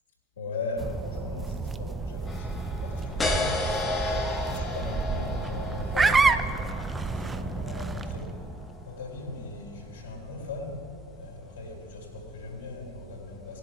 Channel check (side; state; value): both; normal; correlation 0.62